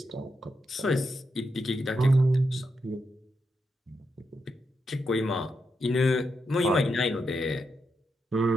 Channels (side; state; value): both; normal; correlation 0.84